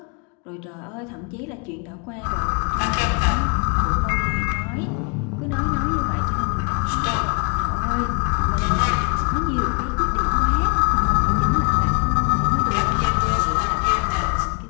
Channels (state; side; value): quieter; right; 34.8 dB